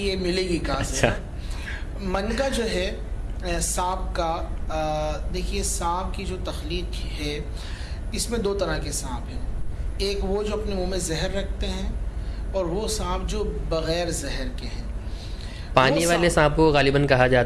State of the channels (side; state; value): both; identical; correlation 1.00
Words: ملے گی کہاں سے۔ من کا جو ہے سانپ کا، دیکھیے سانپ کی جو تخلیق ہے اس میں 2 طرح کے سانپ ہیں، ایک وہ جو اپنے منہ میں زہر رکھتے ہیں اور وہ سانپ جو بغیر زہر کے ہیں۔ پانی والے سانپ کو غالباً کہا